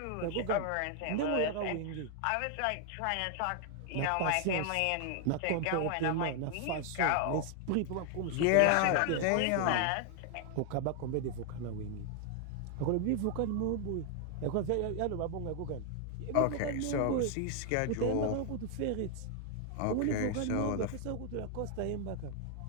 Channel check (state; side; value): different; both; correlation 0.00